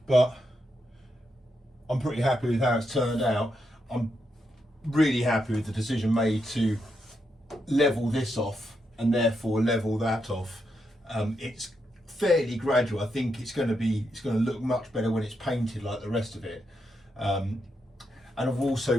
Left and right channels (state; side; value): normal; both; correlation 0.82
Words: I'm pretty happy with how it's turned out. I'm really happy with the decision made to level this off and therefore level that off. It's fairly gradual. I think it's going to look much better when it's painted like the rest of it. And I've